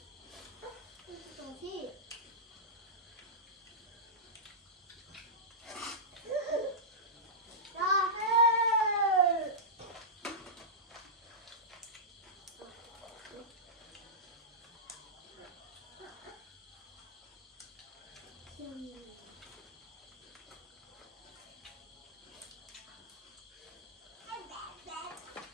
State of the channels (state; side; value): normal; both; correlation -0.15